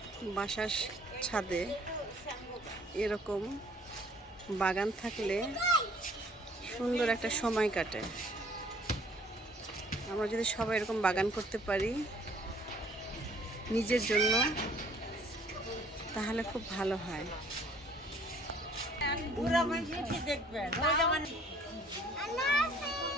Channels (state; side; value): normal; both; correlation 0.57